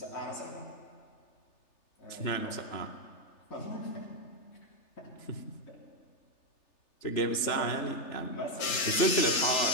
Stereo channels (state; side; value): late; right; 3.4 ms